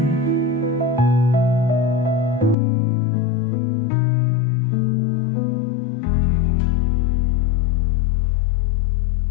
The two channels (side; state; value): right; drops out; at 2.6 s